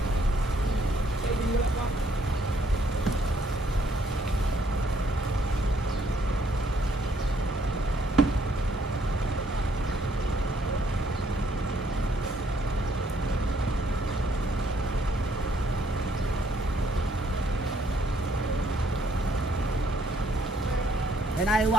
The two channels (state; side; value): normal; both; correlation 0.67